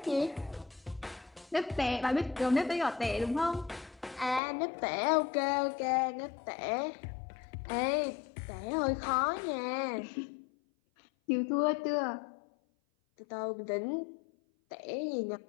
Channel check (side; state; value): right; drops out; at 4.4 s